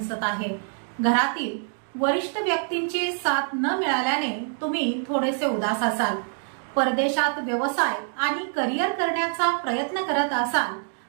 आहे। घरातील वरिष्ठ व्यक्तींची साथ न मिळाल्याने तुम्ही थोडेसे उदास असाल। परदेशात व्यवसाय आणि करिअर करण्याचा प्रयत्न करत असाल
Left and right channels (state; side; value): silent; left; 61 dB below the other